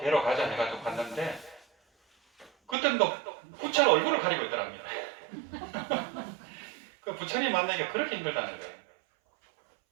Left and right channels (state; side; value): drops out; left; at 2.8 s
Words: 가자 해가지고 갔는데 그때는 또 부처는 얼굴을 가리고 있더랍니다. 그 부처님 만나기가 그렇게 힘들다는 거예요.